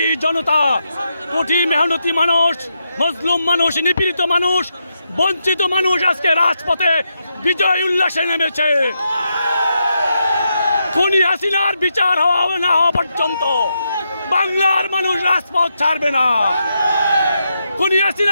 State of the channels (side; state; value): both; inverted; correlation -0.83